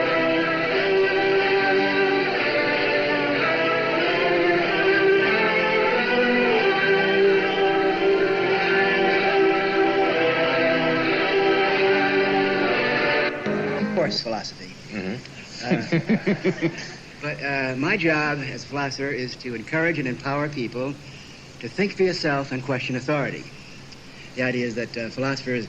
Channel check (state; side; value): identical; both; correlation 1.00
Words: Of course, philosophy. But my job as a philosopher is to encourage and empower people to think for yourself and question authority. The idea is that philosophers